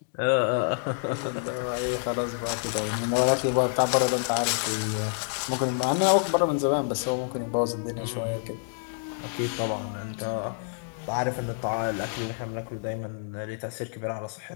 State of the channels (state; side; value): silent; right; digital silence